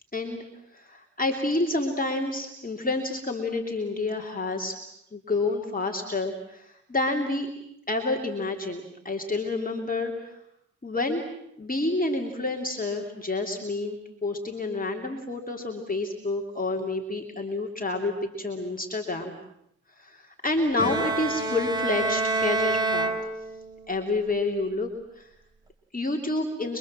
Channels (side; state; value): both; normal; correlation 0.29